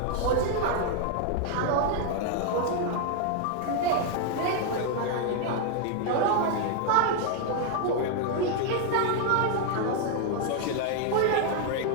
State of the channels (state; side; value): different; both; correlation 0.00